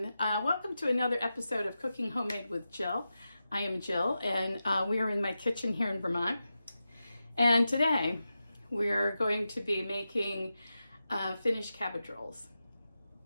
welcome to another episode of Cooking Homemade with Jill. I am Jill and we are in my kitchen here in Vermont. And today we're going to be making Finnish cabbage rolls.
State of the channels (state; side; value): inverted; both; correlation -0.91